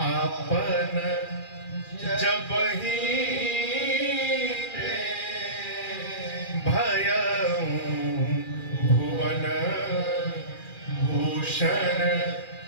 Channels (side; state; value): right; late; 2.4 ms